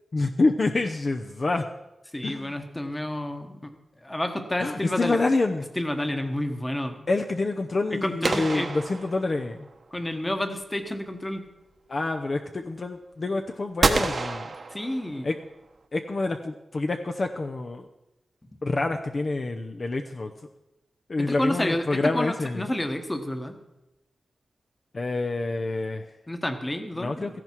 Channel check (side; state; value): both; normal; correlation 0.95